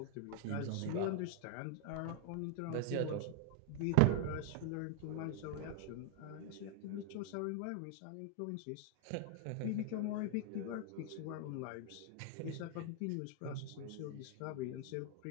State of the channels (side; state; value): both; different; correlation 0.00